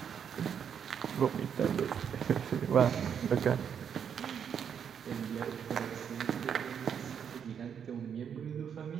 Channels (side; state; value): left; quieter; 7.8 dB